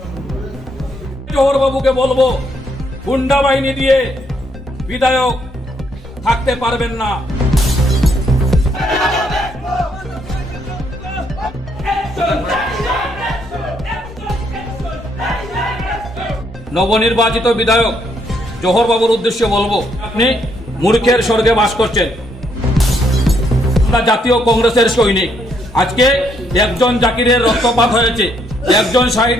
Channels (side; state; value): both; normal; correlation 0.73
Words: জোহর বাবুকে বলবো, গুন্ডা বাহিনী দিয়ে বিধায়ক থাকতে পারবেন না। নবনির্বাচিত বিধায়ক জোহর বাবুর উদ্দেশ্যে বলবো, আপনি মূর্খের স্বর্গে বাস করছেন। আমরা জাতীয় কংগ্রেসের সৈনিক। আজকে একজন জাকিরের রক্তপাত হয়েছে, একজন